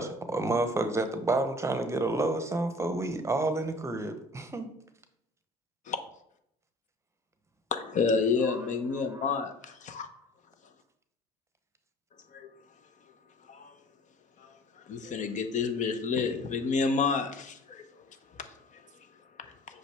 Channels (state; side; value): normal; both; correlation 0.48